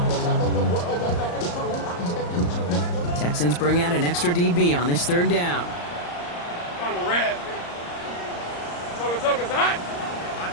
Texans bring out an extra DB on this 3rd down. On the red. Toca's hot.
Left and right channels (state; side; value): late; right; 34 ms